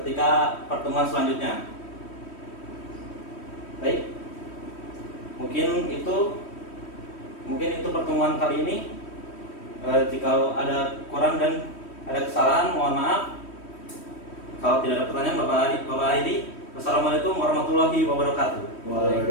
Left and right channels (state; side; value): late; right; 3.1 ms